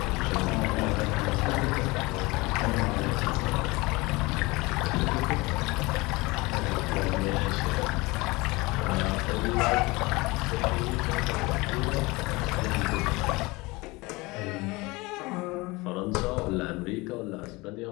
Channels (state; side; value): quieter; right; 23.5 dB